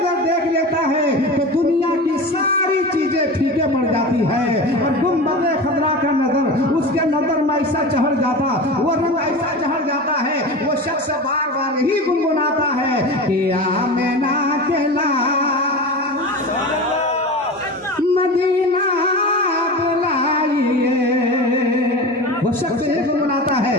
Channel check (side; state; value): both; normal; correlation 0.29